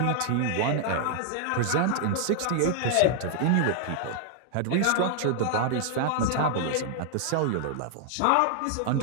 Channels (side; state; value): both; different; correlation 0.00